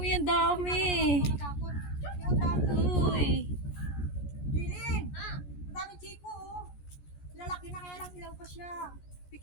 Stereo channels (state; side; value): late; right; 14 ms